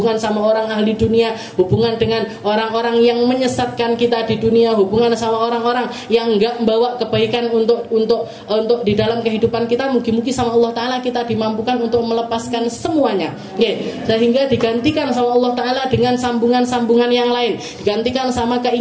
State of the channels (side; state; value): both; identical; correlation 1.00